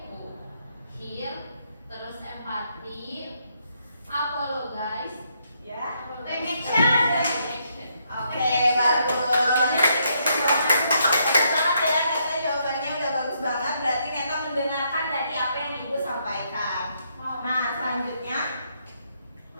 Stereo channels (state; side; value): inverted; both; correlation -0.75